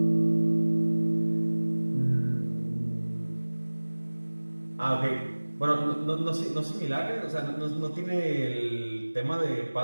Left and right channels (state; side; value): inverted; both; correlation -1.00